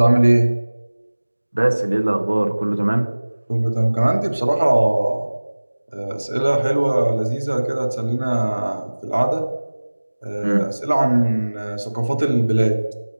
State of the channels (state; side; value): inverted; both; correlation -1.00